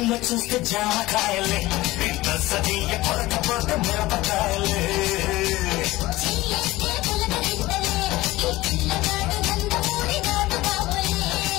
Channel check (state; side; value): quieter; right; 18.7 dB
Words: చూస్తే జామకాయలే పిల్ల సదీయ కొరకపోతే మిరపకాయలే